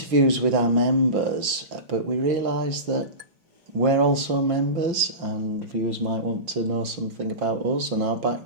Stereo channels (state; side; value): late; left; 5.4 ms